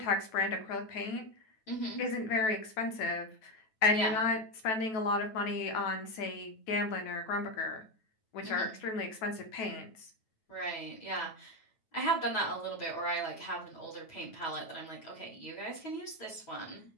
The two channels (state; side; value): late; right; 9.2 ms